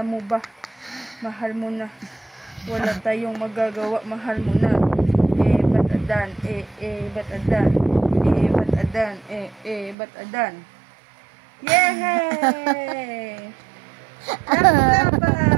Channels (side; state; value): left; drops out; at 10.0 s